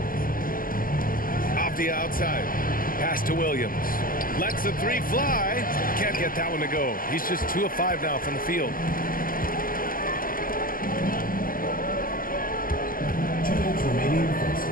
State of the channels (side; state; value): right; late; 0.41 ms